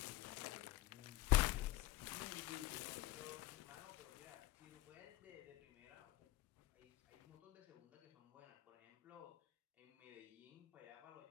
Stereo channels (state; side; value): quieter; right; 16.0 dB